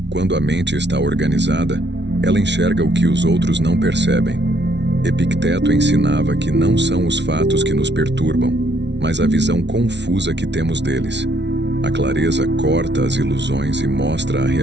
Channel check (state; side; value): late; left; 0.51 ms